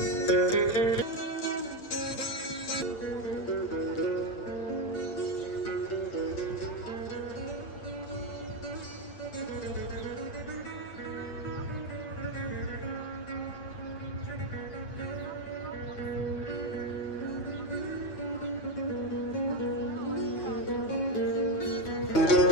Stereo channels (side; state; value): right; late; 9.0 ms